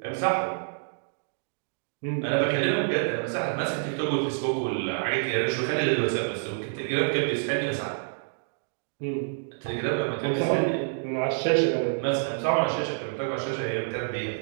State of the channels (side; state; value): left; silent; digital silence